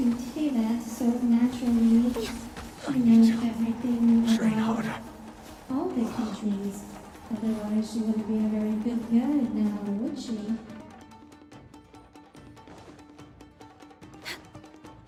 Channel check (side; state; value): both; identical; correlation 1.00